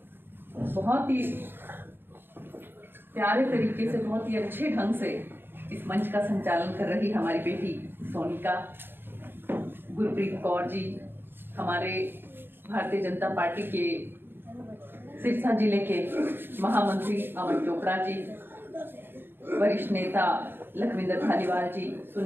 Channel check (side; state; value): left; late; 0.10 ms